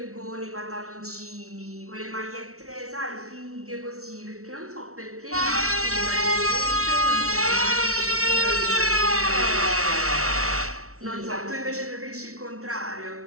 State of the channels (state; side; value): late; left; 0.63 ms